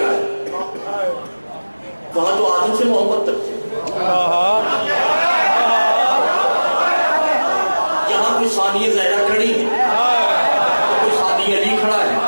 وہاں تو آدم سے محبت تک تھی. یہاں کوئی ثانیہ زہرا کھڑی ہے علی کھڑا ہے.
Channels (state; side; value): inverted; both; correlation -1.00